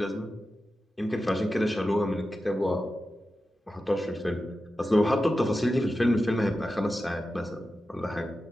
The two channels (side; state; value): both; normal; correlation 0.92